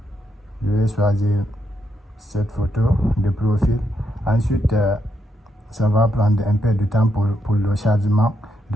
Je vais choisir cette photo de profil. Ensuite, ça va prendre un peu de temps pour le chargement.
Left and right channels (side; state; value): both; normal; correlation 0.80